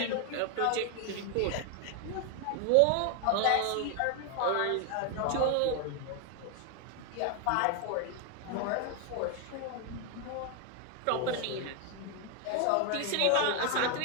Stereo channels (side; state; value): both; different; correlation 0.00